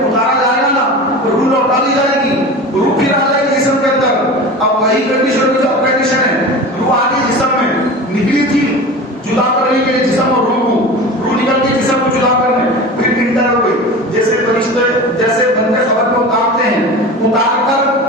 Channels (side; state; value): both; normal; correlation 0.33